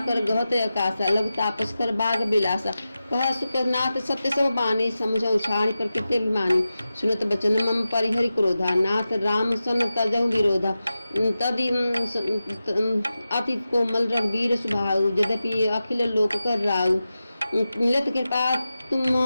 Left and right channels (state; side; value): inverted; both; correlation -0.93